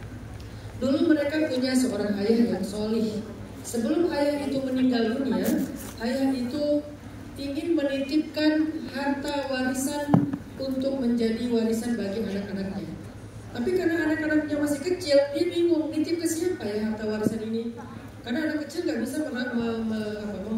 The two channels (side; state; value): both; identical; correlation 1.00